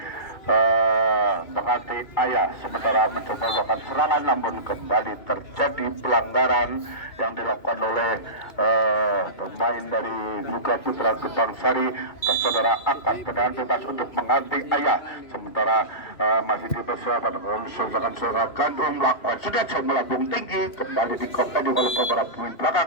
Menganti Ayah, sementara mencoba melakukan serangan namun kembali terjadi pelanggaran yang dilakukan oleh pemain dari Luka Putra Gebang Sari. Saudara akan tendangan bebas untuk Menganti Ayah, sementara masih dipersiapkan saudara Gandum melakukan sudah melambung tinggi kembali dikompeni oleh beberapa pemain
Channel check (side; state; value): right; late; 2.5 ms